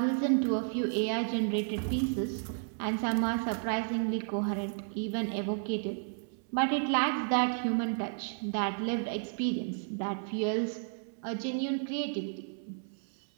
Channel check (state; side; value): silent; left; 56 dB below the other